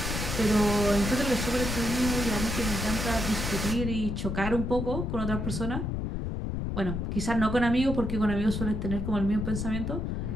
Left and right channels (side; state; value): left; noise; rumble, 2 dB below the sound